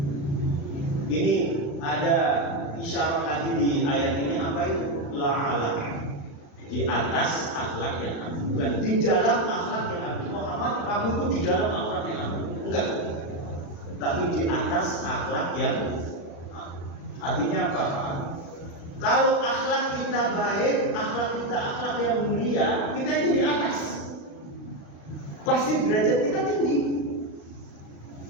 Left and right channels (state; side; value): late; right; 36 ms